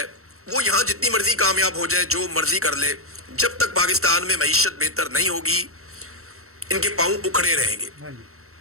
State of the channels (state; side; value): late; left; 0.63 ms